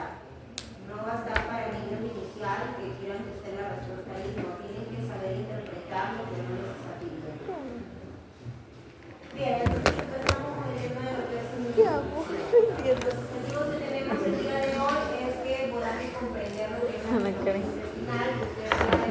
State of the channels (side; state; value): both; identical; correlation 1.00